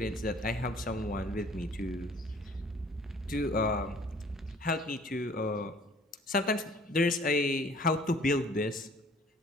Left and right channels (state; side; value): normal; both; correlation 0.54